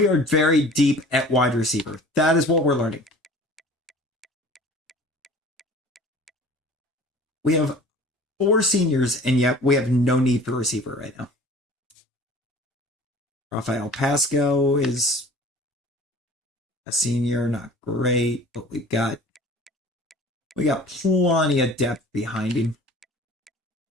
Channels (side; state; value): both; normal; correlation 0.46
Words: are very deep at wide receiver. That is what we're learning. We have 4 seniors, and yet we have no need for receiver right now. Rafael Pasco is a senior, not great, but we got plenty of depth behind him.